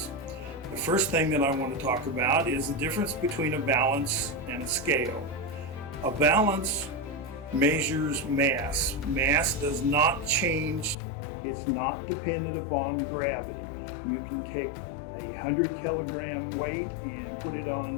The first thing that I want to talk about is the difference between a balance and a scale. A balance measures mass. Mass does not change. It's not dependent upon gravity. You can take a 100 kilogram weight and put it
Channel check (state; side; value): drops out; right; at 11.0 s